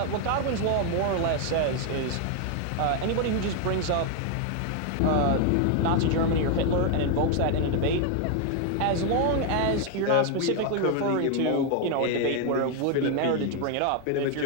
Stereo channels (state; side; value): different; both; correlation 0.01